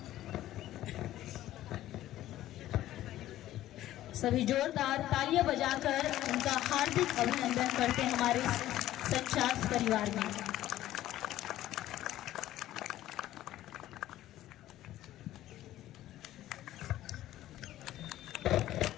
सभी जोरदार तालियां बजाकर उनका हार्दिक अभिनंदन करते हैं हमारे संचार परिवार में।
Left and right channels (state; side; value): quieter; right; 14.0 dB